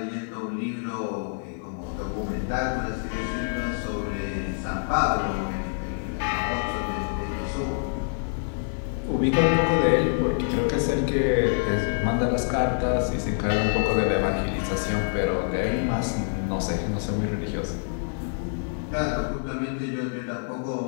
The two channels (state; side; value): silent; right; digital silence